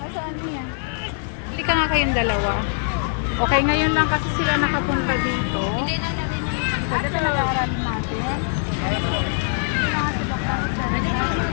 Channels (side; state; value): right; silent; digital silence